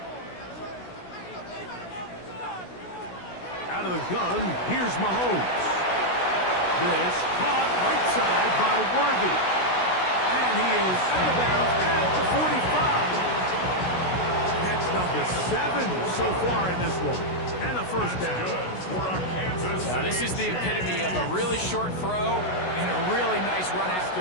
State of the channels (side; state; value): right; late; 16 ms